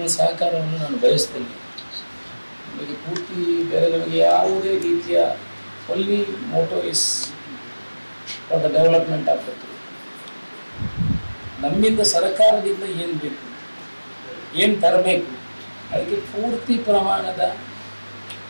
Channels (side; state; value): both; inverted; correlation -1.00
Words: ಸಹಕಾರವನ್ನು ನಾನು ಬಯಸ್ತೇನೆ. ನಮಗೆ ಪೂರ್ತಿ ಬೇರೆ ನಮಗೆ ಯಾವುದೇ ರೀತಿಯ only motto is for the development of Puttur. ನಮ್ಮಿಂದ ಸರ್ಕಾರದಿಂದ ಏನು ಬೇಕು, ಏನು ತರಬೇಕು, ಅದಕ್ಕೆ ಪೂರ್ತಿ ಪ್ರಮಾಣದ